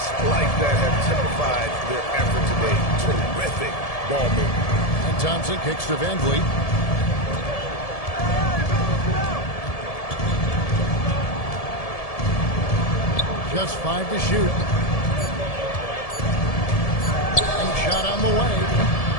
like that have typified their effort today. Terrific ball movement. And Thompson kicks to Van Vliet. Just 5 to shoot. And shot on the way.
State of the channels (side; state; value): right; late; 1.7 ms